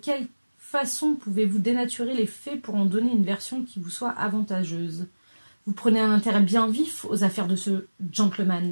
façon pouvez-vous dénaturer les faits pour en donner une version qui vous soit avantageuse? Vous prenez un intérêt bien vif aux affaires de ce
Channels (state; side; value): inverted; both; correlation -1.00